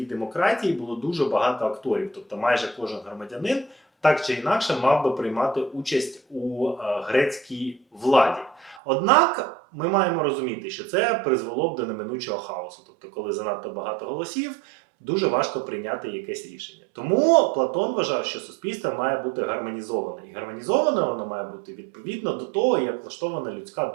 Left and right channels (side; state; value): left; drops out; at 8.8 s